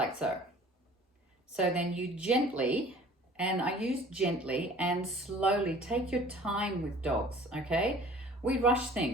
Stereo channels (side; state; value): both; normal; correlation 0.49